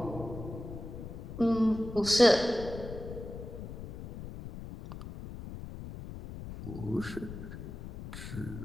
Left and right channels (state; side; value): noise; left; rumble, 10 dB below the sound